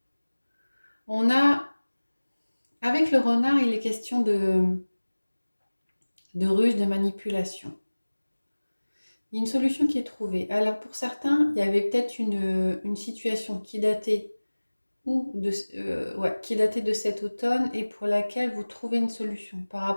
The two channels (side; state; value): both; inverted; correlation -1.00